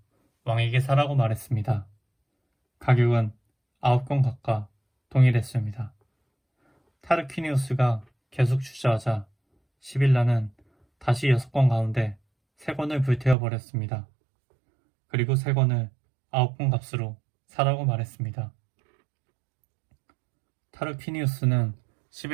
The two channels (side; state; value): left; drops out; at 13.4 s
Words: 왕에게 사라고 말했습니다. 가격은 9권 값과 동일했습니다. 타르퀴니우스가 계속 주저하자 시빌라는 다시 6권 가운데 3권을 불태워 버렸습니다. 그리고 3권을 9권 값으로 사라고 말했습니다. 타르퀴니우스는